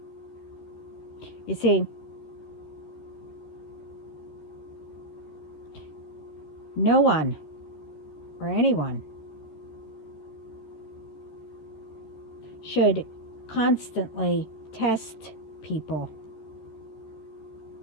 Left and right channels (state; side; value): late; right; 13 ms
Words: You see, no one or anyone should constantly test people.